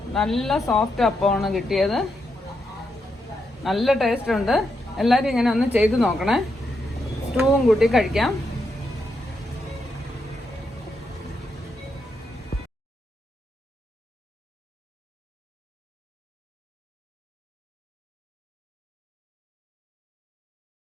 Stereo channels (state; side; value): normal; both; correlation 0.82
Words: നല്ല സോഫ്റ്റ് അപ്പമാണ് കിട്ടിയത്. നല്ല ടേസ്റ്റ് ഉണ്ട്. എല്ലാവരും ഇങ്ങനെ ഒന്ന് ചെയ്ത് നോക്കണേ. സ്റ്റൂവും കൂട്ടി കഴിക്കാം.